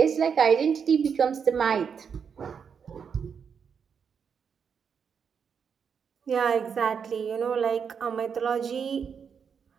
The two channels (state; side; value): quieter; left; 6.7 dB